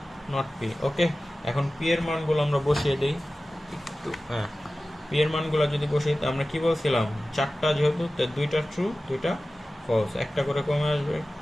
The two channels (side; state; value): both; normal; correlation 0.96